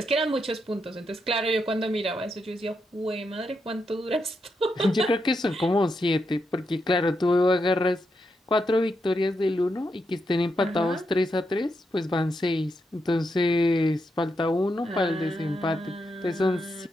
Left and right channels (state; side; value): normal; both; correlation 0.83